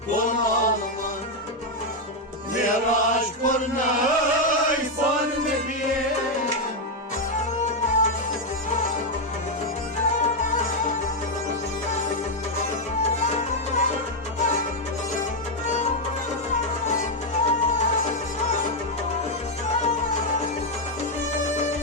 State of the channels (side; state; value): both; normal; correlation 0.02